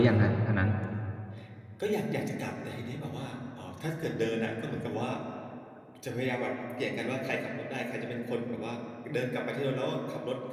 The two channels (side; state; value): both; identical; correlation 1.00